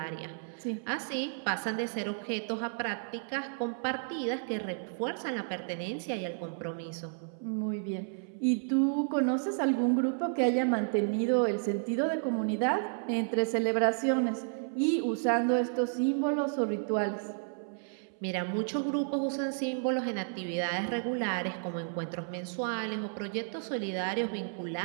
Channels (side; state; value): left; silent; 56 dB below the other